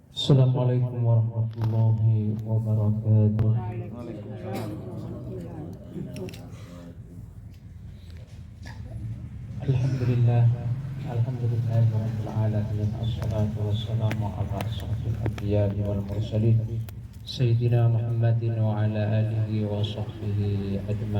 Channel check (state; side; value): identical; both; correlation 1.00